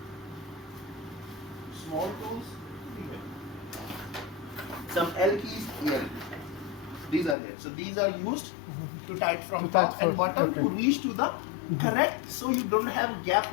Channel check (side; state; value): right; drops out; at 7.4 s